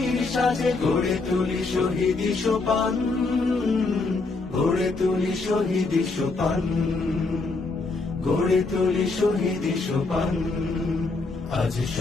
সাজে গড়ে তুলি শহীদি সোপান, গড়ে তুলি শহীদি সোপান, গড়ে তুলি শহীদি সোপান। আজ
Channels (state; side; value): quieter; right; 3.6 dB